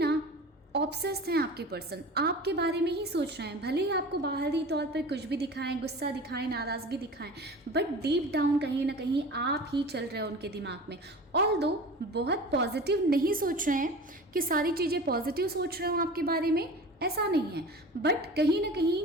ऑब्सेस्ड हैं आपके पर्सन, आपके बारे में ही सोच रहे हैं। भले ही आपको बाहरी तौर पर कुछ भी दिखाएं, गुस्सा दिखाएं, नाराज़गी दिखाएं, बट डीप डाउन कहीं ना कहीं आप ही चल रहे हो उनके दिमाग में। ऑल्दो बहुत पॉजिटिव नहीं सोच रहे हैं कि सारी चीज़ें पॉजिटिव सोच रहे हो आपके बारे में, ऐसा नहीं है। बट कहीं ना कहीं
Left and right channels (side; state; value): both; normal; correlation 0.37